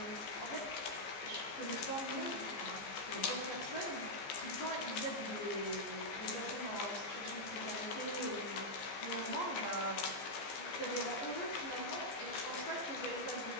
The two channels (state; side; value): late; right; 15 ms